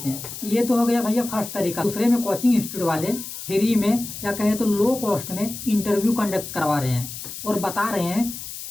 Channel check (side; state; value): left; noise; hiss, 10 dB below the sound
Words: हैं। ये तो हो गया भैया फर्स्ट तरीका। दूसरे में कोचिंग इंस्टीट्यूट वाले फ्री में या कहे तो लो कॉस्ट में इंटरव्यू कंडक्ट करवा रहे हैं और बता रहे हैं